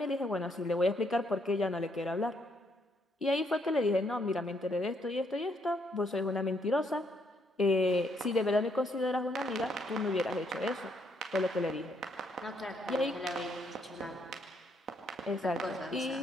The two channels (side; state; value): both; normal; correlation 0.73